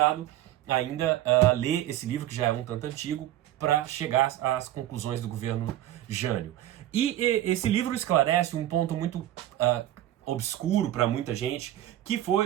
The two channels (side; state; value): left; quieter; 13.3 dB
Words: ainda ler esse livro, que já é um tanto antigo, para chegar às conclusões do governo Jânio. E esse livro esclarece um ponto muito obscuro para muita gente, que